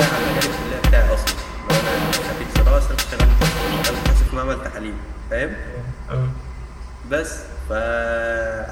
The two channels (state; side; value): identical; both; correlation 1.00